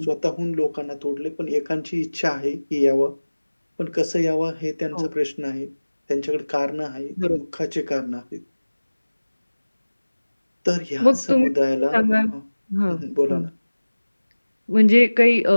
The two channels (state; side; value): inverted; both; correlation -1.00